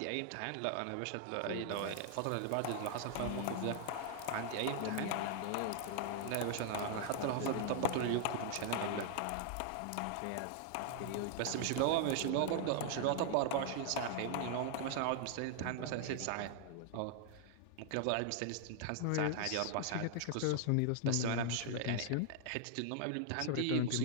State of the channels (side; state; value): both; different; correlation 0.00